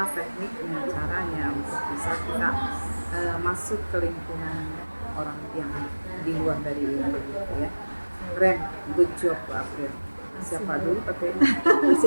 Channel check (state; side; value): inverted; both; correlation -1.00